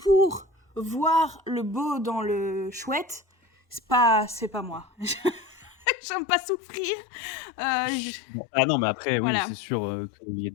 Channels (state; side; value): drops out; right; at 5.9 s